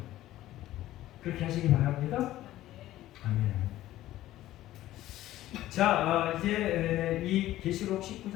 그렇게 하시기 바랍니다. 아멘. 자, 이제 이 계시록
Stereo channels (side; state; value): right; quieter; 14.7 dB